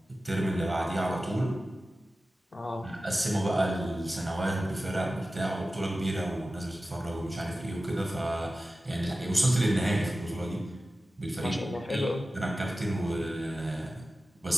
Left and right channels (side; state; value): both; normal; correlation 0.95